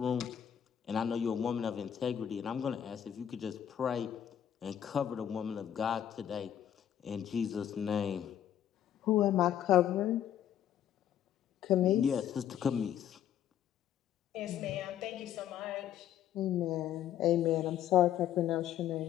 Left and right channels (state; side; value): quieter; right; 10.2 dB